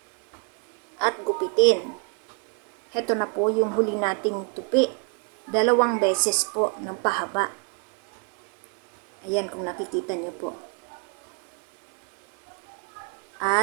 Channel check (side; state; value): left; quieter; 35.0 dB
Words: at gupitin. Heto na po yung huli nating tupi. 2 beses po ng pahaba. Ayan kung nakikita nyo po.